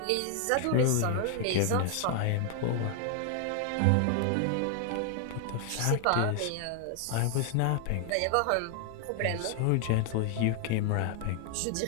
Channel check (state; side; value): different; both; correlation 0.00